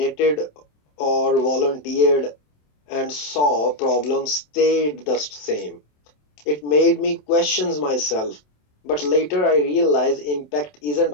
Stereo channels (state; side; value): late; right; 27 ms